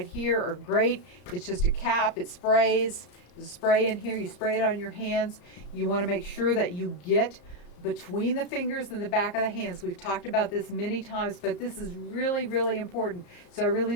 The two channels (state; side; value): late; right; 34 ms